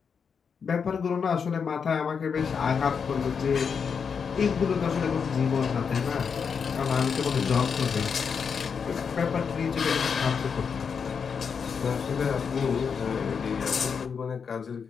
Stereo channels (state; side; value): quieter; right; 6.3 dB